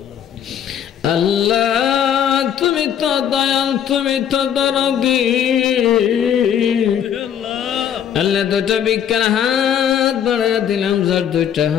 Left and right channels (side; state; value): right; quieter; 9.2 dB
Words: আল্লাহ তুমি তো দয়াল তুমি তো দরদি আল্লাহ দুটো বিজ্ঞান হাত বাড়াইয়া দিলাম যার দুইটা